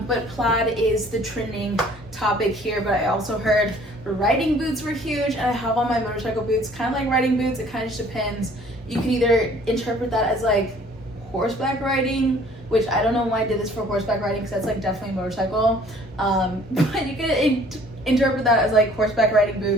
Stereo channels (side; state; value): both; normal; correlation 0.55